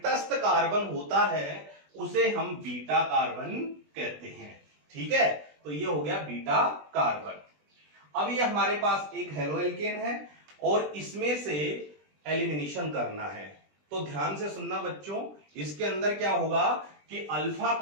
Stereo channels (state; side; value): late; left; 20 ms